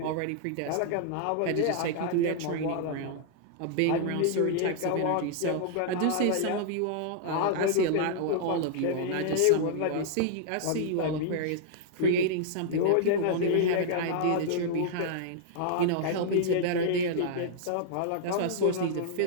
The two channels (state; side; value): different; both; correlation -0.01